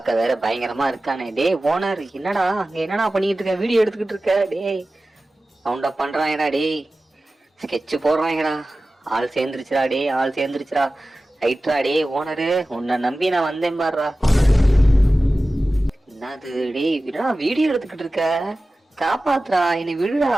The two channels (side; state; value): both; normal; correlation 0.95